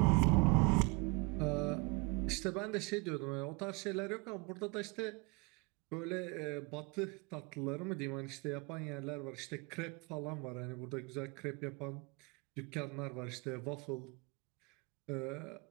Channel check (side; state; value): left; quieter; 29.5 dB